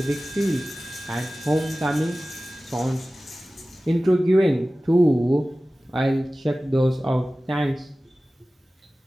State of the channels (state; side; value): normal; both; correlation 0.96